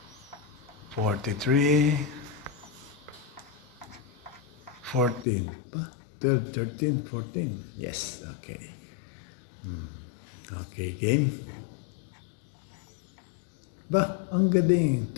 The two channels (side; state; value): right; drops out; at 5.2 s